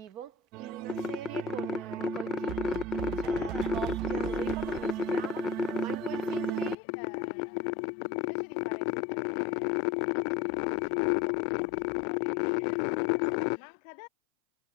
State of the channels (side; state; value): right; drops out; at 6.8 s